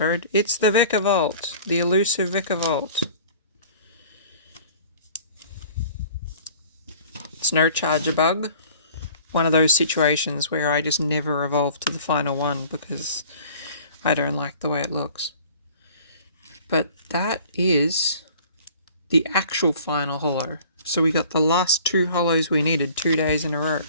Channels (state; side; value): inverted; both; correlation -0.48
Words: it's the Vikavolt, the elusive Vikavolt. It's no charger bug. One of those situations where I just never evolve to the final one because I don't like the way it looks. But that is the actual final holo. So we got the last 2 holos we needed 2 days in a row.